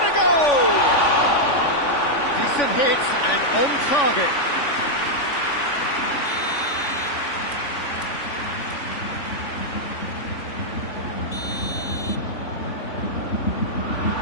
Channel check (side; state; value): right; late; 3.5 ms